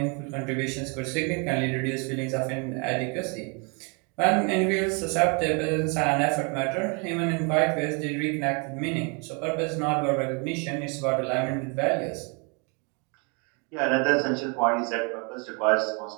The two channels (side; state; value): left; quieter; 33.8 dB